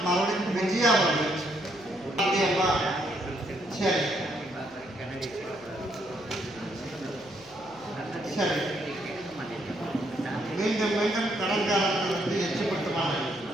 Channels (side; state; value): left; noise; hum, 26 dB below the sound